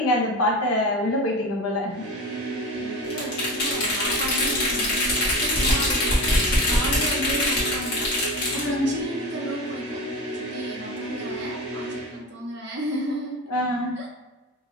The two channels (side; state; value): both; normal; correlation 0.27